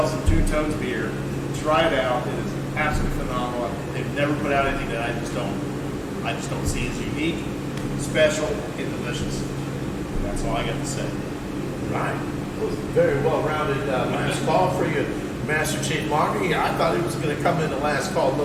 some Two Tones beer, try it out. It is absolutely phenomenal. They've never put out anything that I just don't see as unique, special, and delicious. That's all I got to say. Right. That was a very well-rounded last call for you, Master Chief Monger. I thought he was going to come in the last call a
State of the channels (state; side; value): identical; both; correlation 1.00